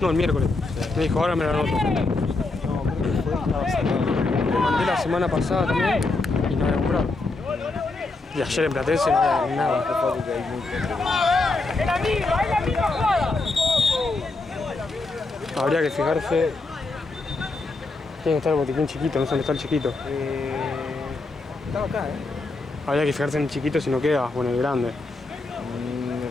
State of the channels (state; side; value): quieter; right; 3.4 dB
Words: el miércoles. Me dijo, ahora me lo anoto. No, creo que fue, estaba cerrado. Le mandé la semana pasada también y no había comprado. Y ayer en Platense no había nada. ¡Es la misma jugada! Habría que fijarse. Tiene que estar el botiquín chiquito, no sé dónde está el chiquito. Estaba acá, Habría que fijarse en el chiquito si no queda, o en el grande. Me